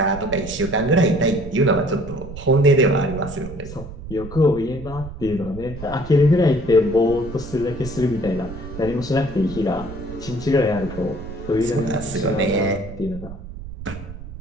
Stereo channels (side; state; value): right; noise; rumble, 12 dB below the sound